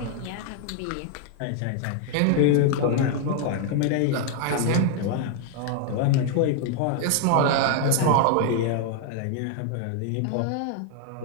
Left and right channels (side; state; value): both; different; correlation 0.00